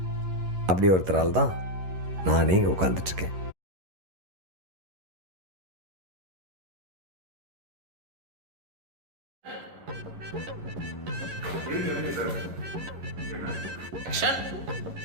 அப்படி ஒருத்தரால் தான் நானே இங்கே உட்காந்துட்ருக்கேன்.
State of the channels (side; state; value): left; late; 11 ms